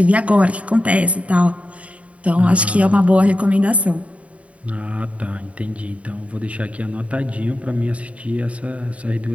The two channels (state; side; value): late; left; 0.065 ms